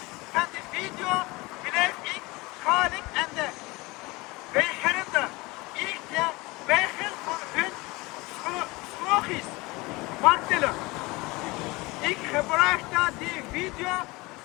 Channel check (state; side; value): quieter; right; 23.3 dB